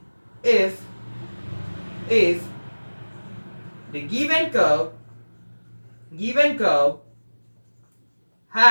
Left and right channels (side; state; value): both; inverted; correlation -1.00